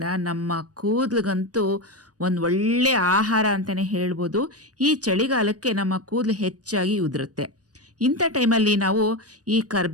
ನಮ್ಮ ಕೂದಲಿಗಂತೂ ಒಂದು ಒಳ್ಳೆಯ ಆಹಾರ ಅಂತಲೇ ಹೇಳ್ಬೋದು. ಈ ಚಳಿಗಾಲಕ್ಕೆ ನಮ್ಮ ಕೂದಲು ಹೆಚ್ಚಾಗಿ ಉದುರುತ್ತೆ. ಇಂಥ ಟೈಮಲ್ಲಿ ನಾವು ಈ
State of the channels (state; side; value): late; left; 0.68 ms